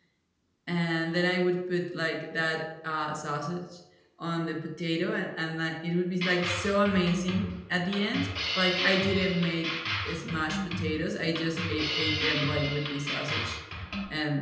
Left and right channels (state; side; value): identical; both; correlation 1.00